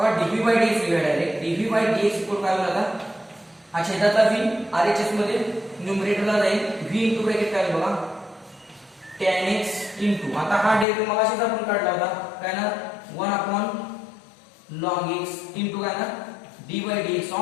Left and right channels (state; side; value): drops out; right; at 10.9 s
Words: dv by dx लिहूया direct. dv by dx equal काय होईल, आता हा छेदाचा v RHS मध्ये न्यूमरेटरला जाईल, v इनटू ब्रॅकेट काय होईल बघा, tan x इनटू, आता हा डेरिव्हेटिव्ह मगाशीच आपण काढला होता, काय ना 1/log x इनटू काय ना d by dx